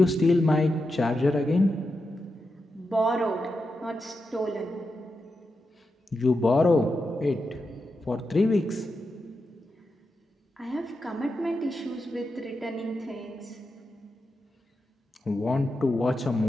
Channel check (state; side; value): normal; both; correlation 0.88